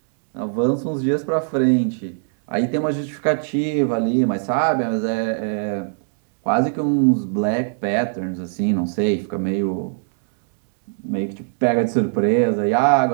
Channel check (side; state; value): left; silent; digital silence